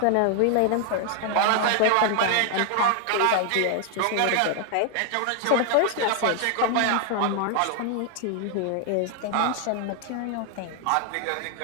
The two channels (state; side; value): different; both; correlation 0.00